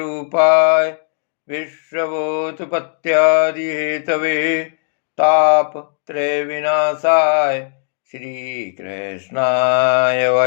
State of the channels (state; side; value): silent; right; digital silence